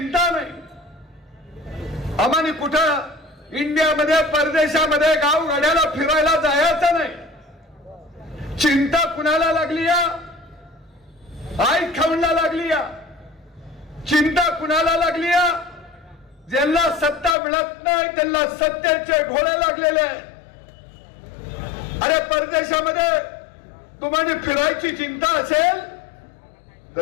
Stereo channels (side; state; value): right; drops out; at 17.4 s